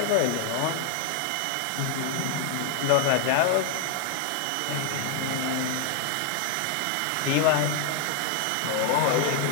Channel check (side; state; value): both; different; correlation 0.00